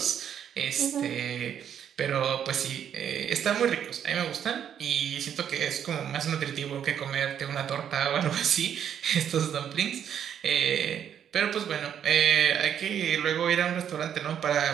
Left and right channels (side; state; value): left; quieter; 9.0 dB